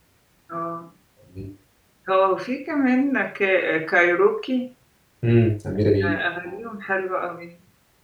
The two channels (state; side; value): identical; both; correlation 1.00